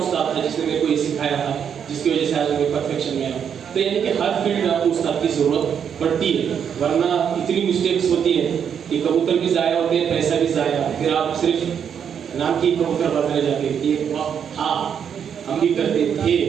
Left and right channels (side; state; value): left; quieter; 7.9 dB